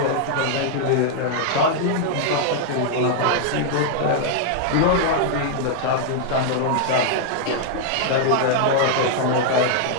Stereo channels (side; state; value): both; different; correlation -0.01